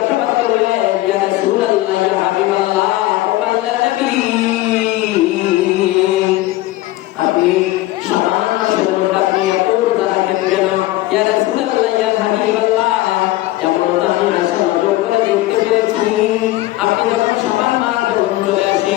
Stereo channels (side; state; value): right; quieter; 17.1 dB